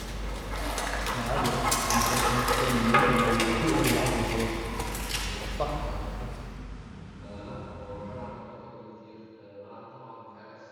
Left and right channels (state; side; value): identical; both; correlation 1.00